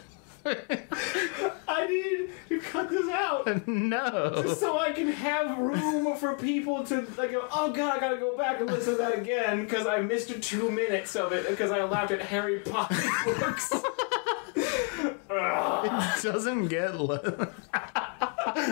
I need to cut this out. No. Just so I can have room for people to like go, oh god, I gotta go back and listen to that again because I missed 2 minutes of it because I laughed at Harry Potter books. It doesn't get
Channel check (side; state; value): right; quieter; 35.5 dB